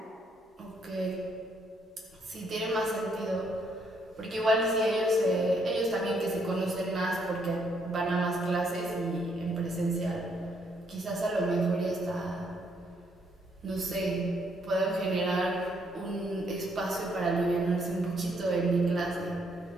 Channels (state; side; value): normal; both; correlation 0.72